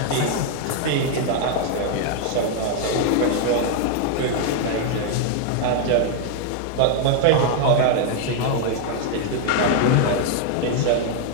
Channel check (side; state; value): both; different; correlation 0.00